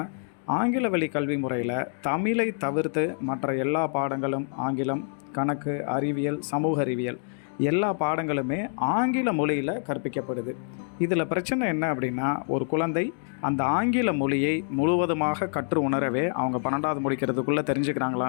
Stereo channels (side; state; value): right; silent; 56 dB below the other